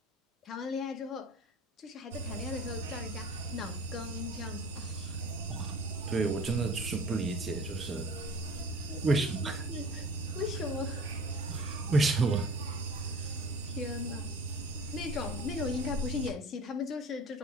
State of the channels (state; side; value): normal; both; correlation 0.42